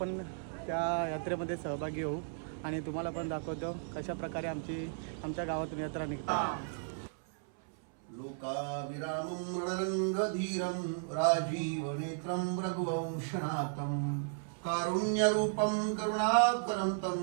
त्या यात्रेमध्ये सहभागी होऊ आणि तुम्हाला पण दाखवतो कशा प्रकारे आमच्या गावातून यात्रा निघते। लोकाविरामं रणरंगधीरं राजीवनेत्रं रघुवंशनाथं कारुण्यरूपं करुणाकरन्तं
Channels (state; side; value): silent; left; 55 dB below the other